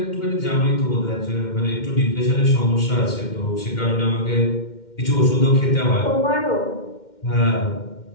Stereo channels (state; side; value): late; right; 2.1 ms